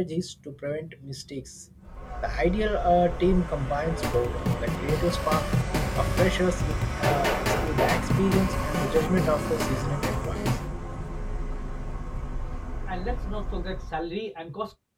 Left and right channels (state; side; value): identical; both; correlation 1.00